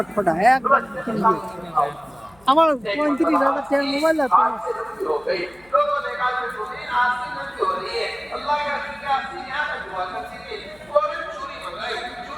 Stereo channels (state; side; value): noise; left; hum, 29 dB below the sound